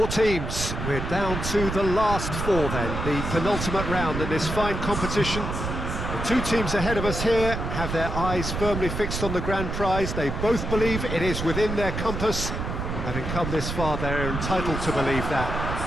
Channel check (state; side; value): noise; right; rumble, 4 dB below the sound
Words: teams. We're down to the last four then, the penultimate round in this fine competition. The two teams ahead of us here have their eyes firmly fixed on the grand prize. They both believe it is within their compass. Having come this far, they're entitled to believe that.